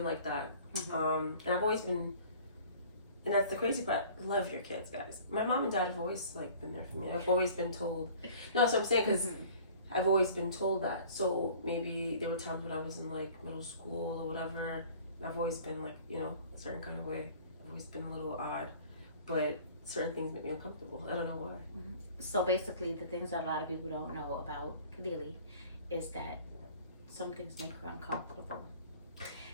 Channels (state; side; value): inverted; both; correlation -0.48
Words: like that. And I've always been, and that's the crazy part, love your kids, guys. My mom and dad have always like been there for me. I've always been told, no, that's what I'm saying, because I've always been told that. So maybe there were times when I was in like middle school or whatever, and I've always been like, you know, a certain kind of way. I've always been a little odd, but certain things make me uncomfortable. I don't know why. So basically, the things that a lot of people don't know about Kadeli is that some things make her uncomfortable.